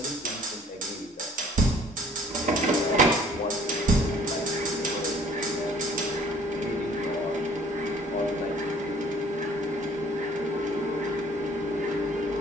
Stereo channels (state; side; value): normal; both; correlation 0.56